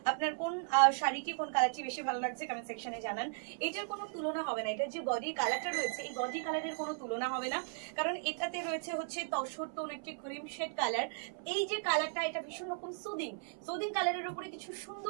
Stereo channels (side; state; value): left; silent; 54 dB below the other